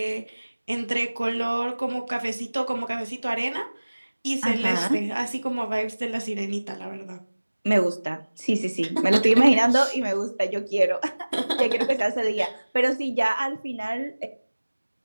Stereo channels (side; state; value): both; inverted; correlation -1.00